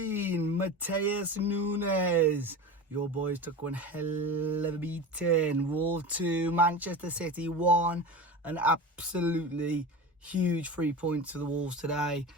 Matheus Nunez? Your boys took one hell of a beating. Wolves 2, Manchester City 1. An absolutely huge 3 points for the Wolves today.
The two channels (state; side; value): normal; both; correlation 0.29